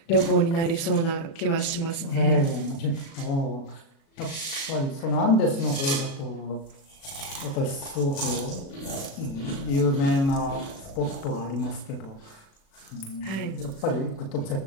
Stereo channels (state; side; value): late; right; 36 ms